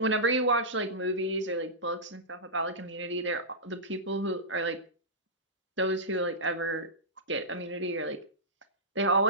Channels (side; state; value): both; normal; correlation -0.16